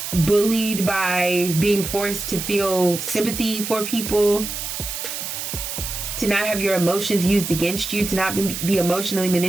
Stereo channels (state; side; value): noise; right; hiss, 6 dB below the sound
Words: bullied by being forced to feel sympathy for people, to not have your emotions used against you, to not be emotionally